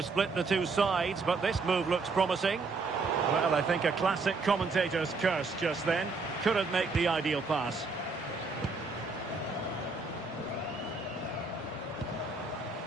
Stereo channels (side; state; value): left; quieter; 4.0 dB